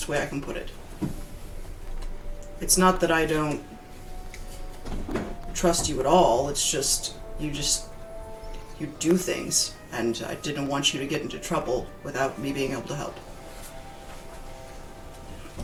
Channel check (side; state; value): both; identical; correlation 1.00